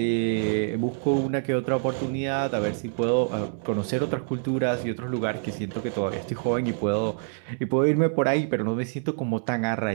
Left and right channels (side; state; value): left; silent; 61 dB below the other